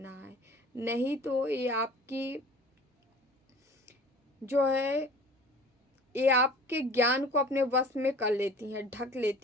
है। नहीं तो ये आपकी जो है, ये आपके ज्ञान को अपने वश में कर लेती हैं, ढक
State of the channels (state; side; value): normal; both; correlation 0.45